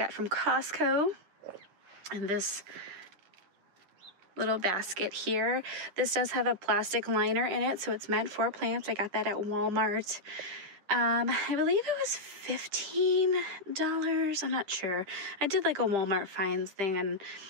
from Costco. And this little basket here. This does have a plastic liner in it, so it's meant for plants. I got that at Walmart. I believe it was $15. I'm not sure. I did like a Walmart finds thing and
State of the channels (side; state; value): left; late; 10 ms